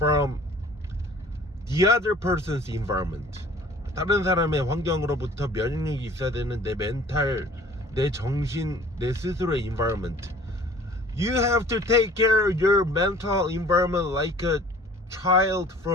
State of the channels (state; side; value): normal; both; correlation 0.49